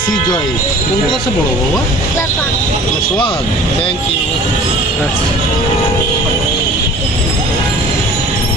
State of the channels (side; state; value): both; normal; correlation 0.45